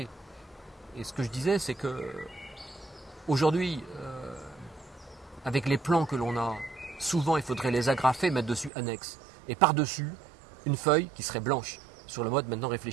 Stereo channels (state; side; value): drops out; left; at 8.7 s